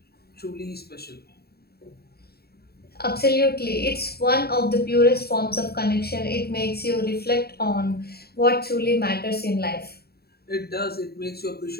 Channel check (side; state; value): right; late; 0.46 ms